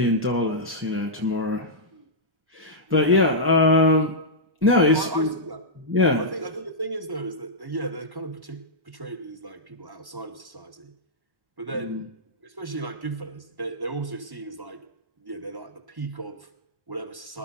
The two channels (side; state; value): left; late; 1.1 ms